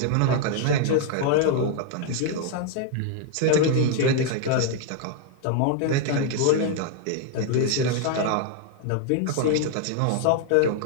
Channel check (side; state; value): both; different; correlation 0.00